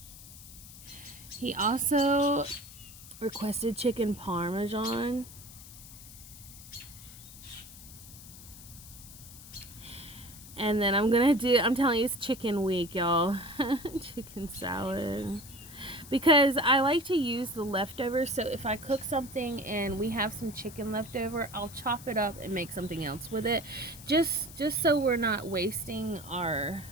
He also requested chicken parmesan. And then I'm telling you, it's chicken week, y'all. Chicken salad. Because I like to use the leftovers, so if I cook something and we have some chicken left over, I'll chop it up and make something else with it. Just so we're not wasting our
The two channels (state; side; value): noise; left; hiss, 17 dB below the sound